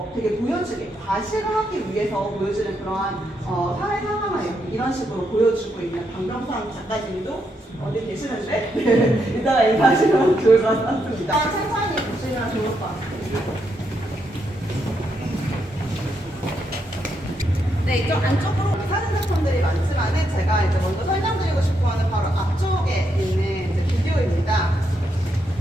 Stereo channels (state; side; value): normal; both; correlation 0.79